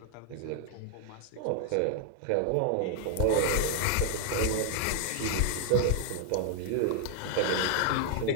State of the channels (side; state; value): both; different; correlation 0.00